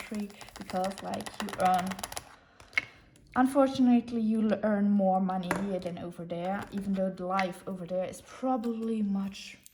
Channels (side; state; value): both; identical; correlation 1.00